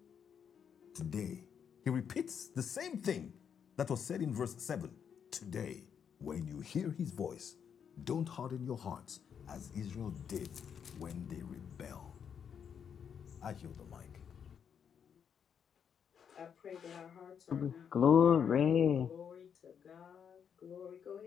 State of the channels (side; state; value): right; quieter; 7.6 dB